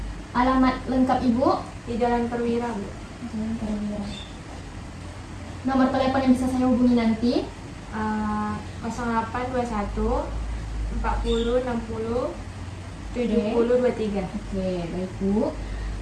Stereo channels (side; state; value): both; identical; correlation 1.00